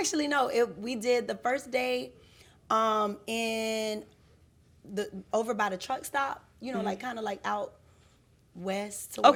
no. We did the first day, in the over by the truck stop. Like kind of like out west. To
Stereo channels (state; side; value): identical; both; correlation 1.00